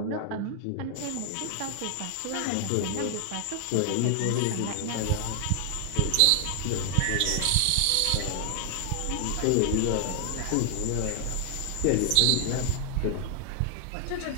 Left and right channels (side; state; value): both; different; correlation 0.00